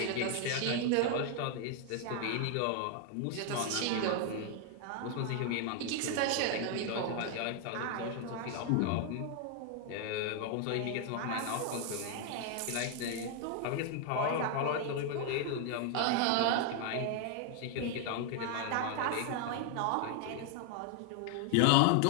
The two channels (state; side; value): different; both; correlation 0.00